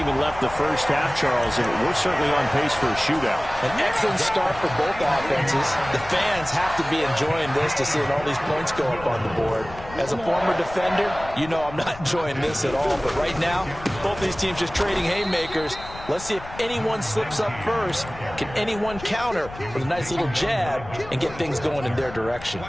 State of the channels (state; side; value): noise; left; rumble, 15 dB below the sound